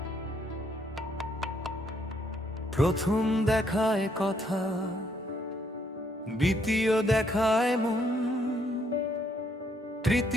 প্রথম দেখায় কথা, দ্বিতীয় দেখায় মন,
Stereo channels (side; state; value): both; normal; correlation 0.71